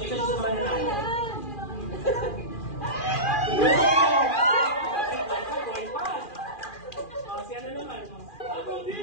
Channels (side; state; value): right; late; 2.4 ms